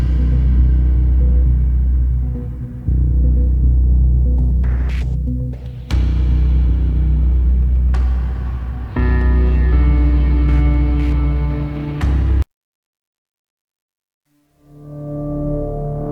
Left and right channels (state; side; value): identical; both; correlation 1.00